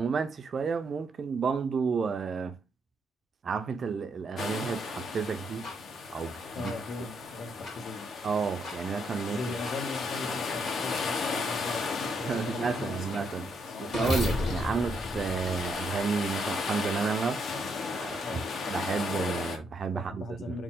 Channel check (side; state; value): both; normal; correlation 0.76